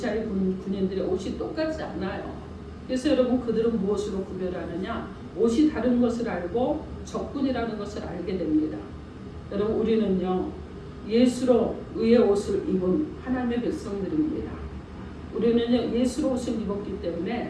군인들의 옷이 똑같지 않아요. 그래서 여러분 그들은 무엇으로 구별하느냐? 옷이 다른 것을 알고 적군이라는 것을 알게 됩니다. 여러분 우리는요 예수로 의의 옷을 입은 하나님의 백성들입니다. 우리는요 예수로 옷을 입었기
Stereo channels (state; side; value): identical; both; correlation 1.00